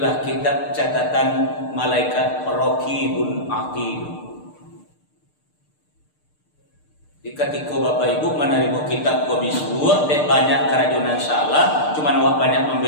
kitab catatan malaikat Raqibun Atid. Ketika Bapak Ibu menerima kitab kau bisbuat, banyak kerajunan salah, cuman awak banyak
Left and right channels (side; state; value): right; late; 6.6 ms